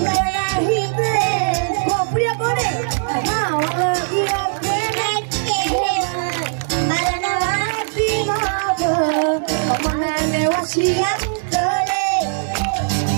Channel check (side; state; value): left; silent; digital silence